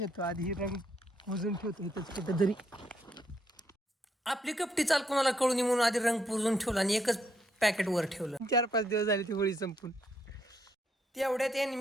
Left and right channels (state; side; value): normal; both; correlation 0.74